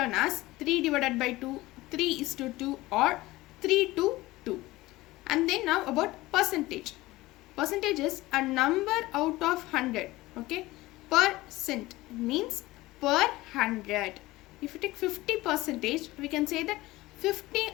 as 3 divided by 2, 3:2 or 3:2. And then now about percentage. Percentage is a number out of 100. Okay, percent means per 100. If you take 50%, we can say that 50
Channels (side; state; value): right; quieter; 18.9 dB